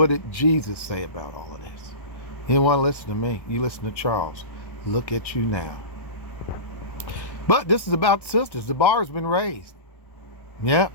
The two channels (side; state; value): right; late; 1.1 ms